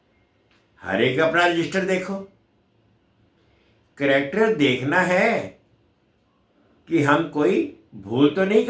हर एक अपना रजिस्टर देखो। कैरेक्टर देखना है कि हम कोई भूल तो नहीं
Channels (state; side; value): identical; both; correlation 1.00